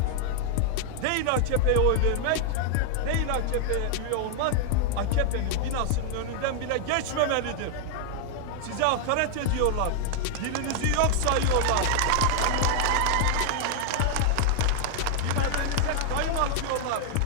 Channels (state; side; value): different; both; correlation 0.00